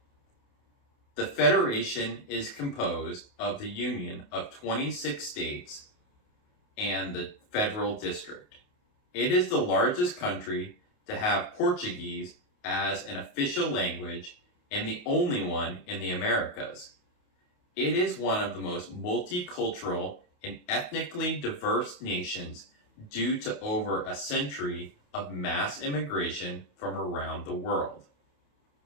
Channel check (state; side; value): late; right; 28 ms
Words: The federation is composed of the union of 26 states and the federal district. It is the largest country to have Portuguese as an official language and the only one in the Americas. It is one of the most multicultural and ethnically diverse nations due to over a century of mass immigration from around the world.